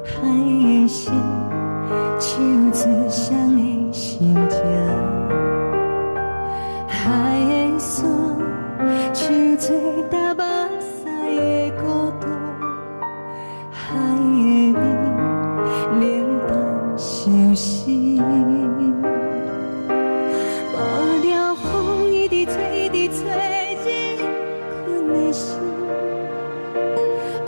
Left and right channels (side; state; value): both; inverted; correlation -1.00